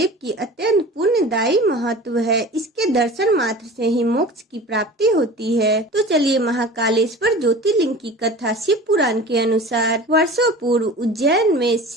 की अत्यंत पुण्यदायी महत्व है। इसके दर्शन मात्र से ही मोक्ष की प्राप्ति होती है। तो चलिए महाकालेश्वर ज्योतिर्लिंग की कथा शिव पुराण के अनुसार वर्षों पूर्व उज्जैन में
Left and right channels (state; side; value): normal; both; correlation 0.38